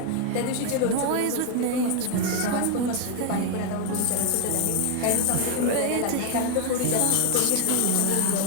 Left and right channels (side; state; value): both; different; correlation 0.01